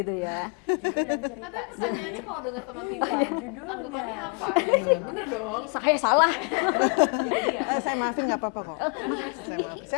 ya. Judul dan cerita Tapi sih. pertanyaannya kalau denger Teman Tidur, Iya, judulnya. tanggapannya apa gitu kan? Bener dong. Saya salah. Itu dia. Saya maafin nggak apa-apa kok.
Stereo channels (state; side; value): quieter; right; 35.6 dB